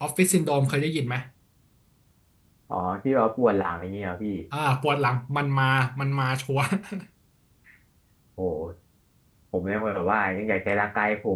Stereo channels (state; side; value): identical; both; correlation 1.00